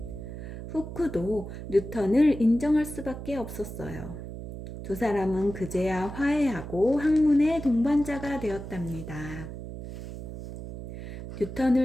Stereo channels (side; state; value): right; noise; hum, 10 dB below the sound